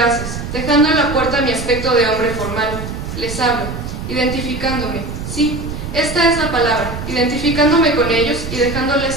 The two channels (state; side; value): noise; right; rumble, 7 dB below the sound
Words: dejando en la puerta mi aspecto de hombre formal. Les hablo, identificándome, sí, esta es la palabra, identificándome con ellos y